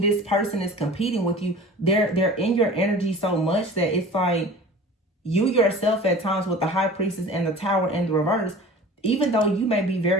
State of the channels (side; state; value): both; normal; correlation 0.41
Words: this person is competing with you. They're in your energy so much that it's like you yourself at times with the High Priestess and the Tower in the reverse, even though you may be